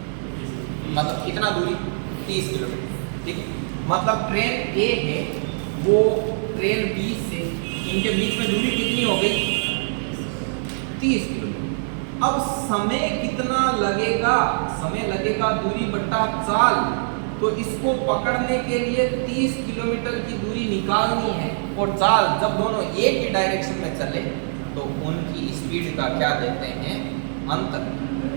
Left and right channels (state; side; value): silent; left; digital silence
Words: मतलब कितना दूरी? 30 किलोमीटर, ठीक है। मतलब ट्रेन ए है वो ट्रेन बी से इनके बीच में दूरी कितनी हो गई? 30 किलोमीटर। अब समय कितना लगेगा? समय लगेगा दूरी बट्टा चाल। तो इसको पकड़ने के लिए 30 किलोमीटर की दूरी निकालनी है, और चाल जब दोनों एक ही डायरेक्शन में चले तो उनकी स्पीड का क्या देते हैं? अंतर।